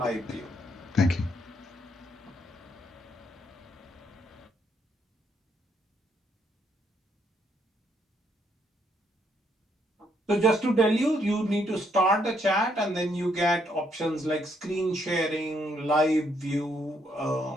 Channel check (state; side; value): normal; both; correlation 0.73